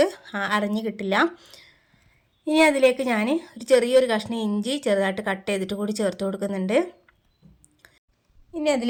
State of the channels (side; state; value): both; identical; correlation 1.00